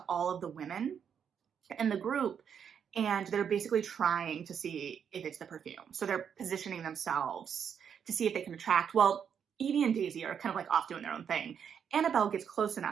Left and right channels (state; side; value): quieter; left; 7.7 dB